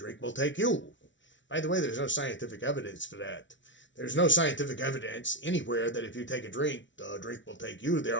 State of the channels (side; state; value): right; late; 0.55 ms